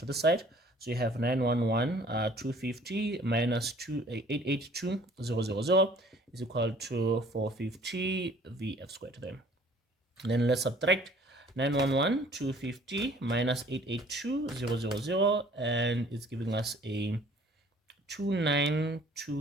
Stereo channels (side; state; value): both; normal; correlation 0.54